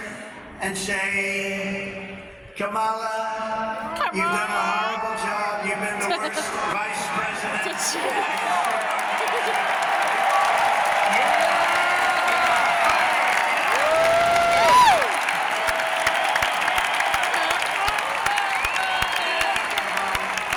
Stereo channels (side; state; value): both; identical; correlation 1.00